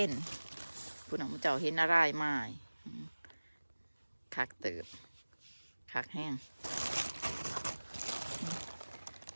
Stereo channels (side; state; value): both; inverted; correlation -1.00